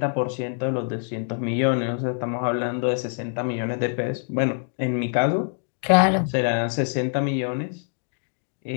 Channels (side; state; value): right; silent; digital silence